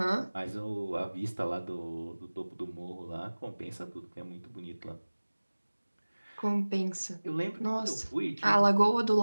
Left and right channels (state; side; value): inverted; both; correlation -1.00